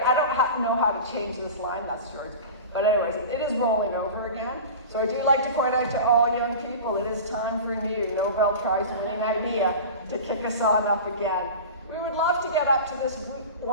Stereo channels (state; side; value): inverted; both; correlation -0.33